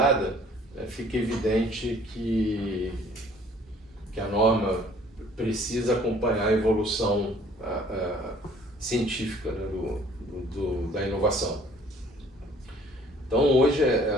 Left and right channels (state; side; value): normal; both; correlation 0.56